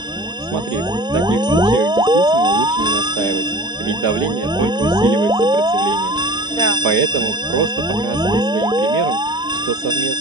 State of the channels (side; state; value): both; normal; correlation 0.41